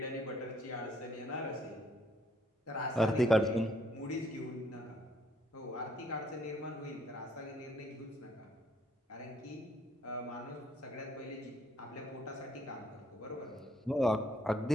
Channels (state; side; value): normal; both; correlation 0.67